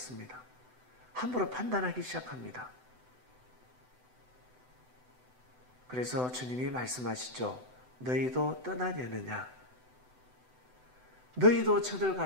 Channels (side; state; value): left; late; 7.9 ms